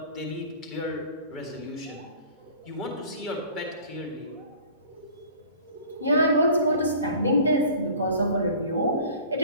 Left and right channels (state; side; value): inverted; both; correlation -0.46